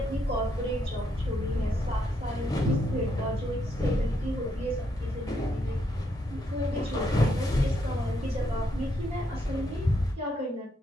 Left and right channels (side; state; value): both; normal; correlation 0.76